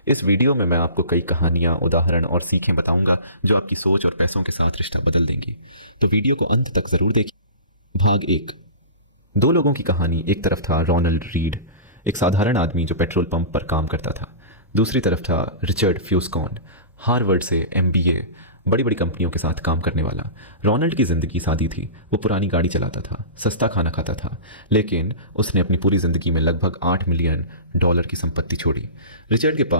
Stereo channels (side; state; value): both; inverted; correlation -0.35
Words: इस वीडियो में मैं आपको कई कहानियां, उदाहरण और सीखें बताऊंगा जो आपकी सोच और पैसों के साथ रिश्ता बदल देंगी। तो वीडियो को अंत तक ज़रूर देखिए। भाग 1। दो लोगों की कहानी। एक तरफ था रोनाल्ड रीड, एक साधारण आदमी जो पेट्रोल पंप पर काम करता था। दूसरी तरफ था रिचर्ड फ्यूस्कॉन, हार्वर्ड से MBA, बड़ी बड़ी कंपनियों के साथ काम करने वाला। रोनाल्ड की ज़िंदगी सादी थी। वो पुरानी गाड़ी चलाता था, सस्ता खाना खाता था, लेकिन उसने अपनी पूरी ज़िंदगी में लगभग $8 मिलियन की संपत्ति छोड़ी। रिचर्ड के